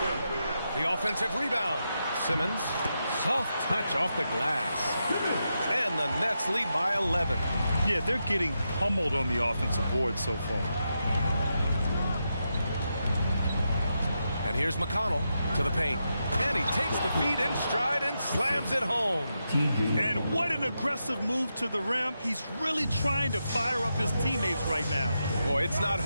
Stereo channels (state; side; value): inverted; both; correlation -0.86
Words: The offensive rebound. Simmons. Soft touch off the glass. And the Nets lead by 11. Yeah, they're getting pummeled on the offensive board so far. And here's McConnell to the paint. And he takes the feed in stride and slams it home. And what an aggressive move to the rim. He's really trying to fire up his teammates right now. Boy, it's not